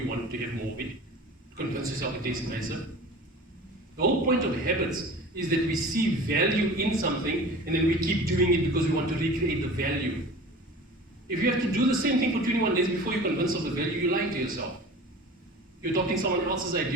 wanted to have more of it, to convince yourself it tastes nicer. The whole point of habits is that we see value in something and then we keep doing it because we want to recreate the value. If you have to do the same thing for 21 days before you're convinced of the value, you're lying to yourself. You're adopting someone else's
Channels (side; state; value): both; normal; correlation 0.39